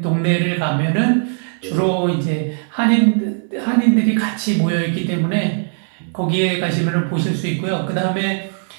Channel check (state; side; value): silent; left; 62 dB below the other